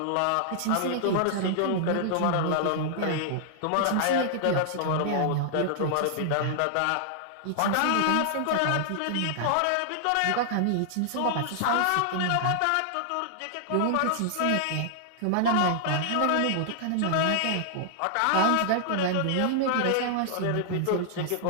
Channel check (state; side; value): different; both; correlation -0.01